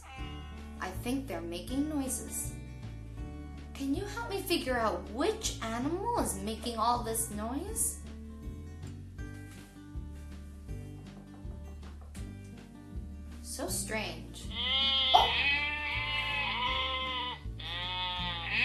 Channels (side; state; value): both; identical; correlation 1.00